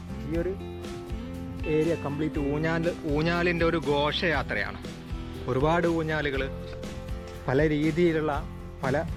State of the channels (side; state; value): both; identical; correlation 1.00